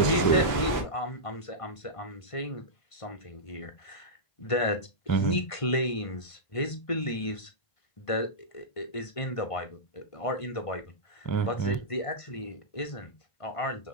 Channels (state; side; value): late; right; 1.5 ms